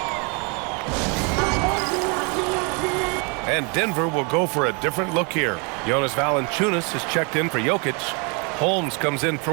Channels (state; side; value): quieter; left; 33.2 dB